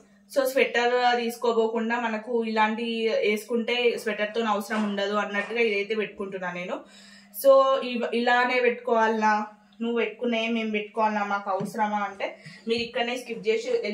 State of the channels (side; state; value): both; identical; correlation 1.00